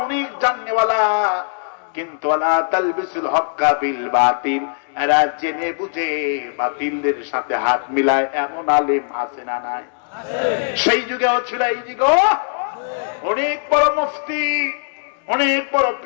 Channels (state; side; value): silent; right; 66 dB below the other